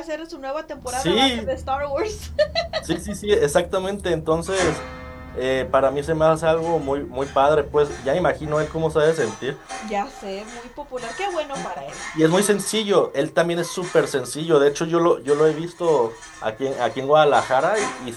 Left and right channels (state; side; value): identical; both; correlation 1.00